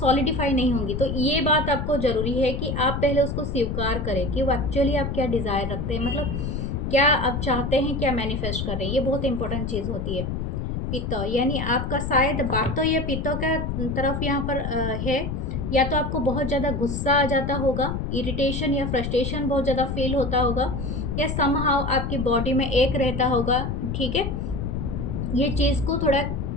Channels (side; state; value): left; noise; rumble, 3 dB below the sound